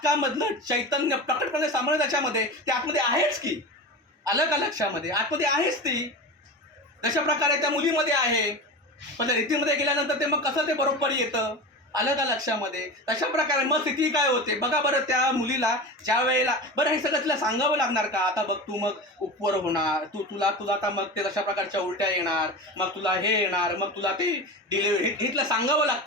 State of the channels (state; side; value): normal; both; correlation 0.28